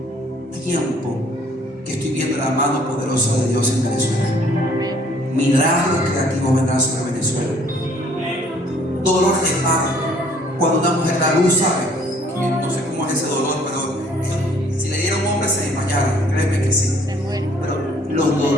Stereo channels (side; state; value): both; normal; correlation 0.60